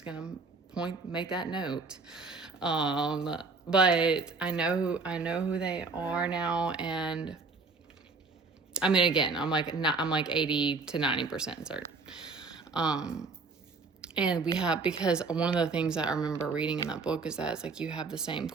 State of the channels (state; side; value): quieter; left; 4.1 dB